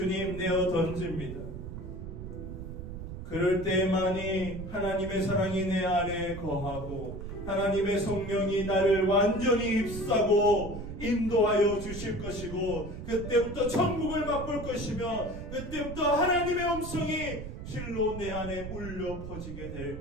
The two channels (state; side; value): noise; right; rumble, 9 dB below the sound